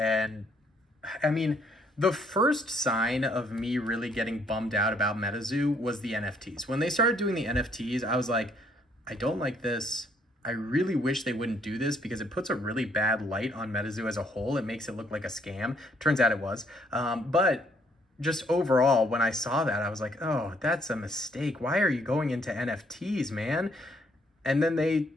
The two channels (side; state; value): both; normal; correlation 0.67